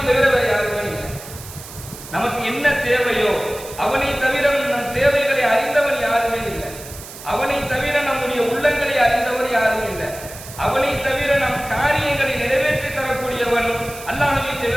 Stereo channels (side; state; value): right; noise; hiss, 15 dB below the sound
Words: தவிர வேறு யாருமே இல்லை. நமக்கு என்ன தேவையோ அவனை தவிர நம் தேவைகளை அறிந்தவன் யாருமே இல்லை. அவனை தவிர நம்முடைய உள்ளங்களை அறிந்தவர் யாரும் இல்லை. அவனை தவிர நம் காரியங்களை நிறைவேற்றி தரக்கூடியவன் அல்லாஹ்வை